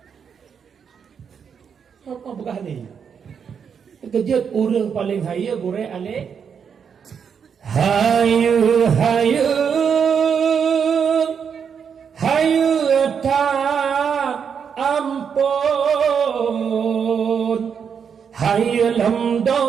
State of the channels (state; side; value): quieter; left; 7.0 dB